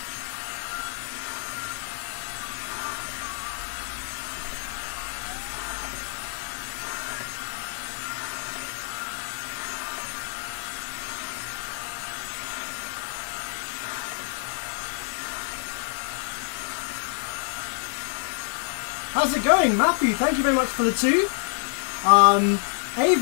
How's it going, Matthew? Thank you very much for the 2.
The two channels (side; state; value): right; silent; 59 dB below the other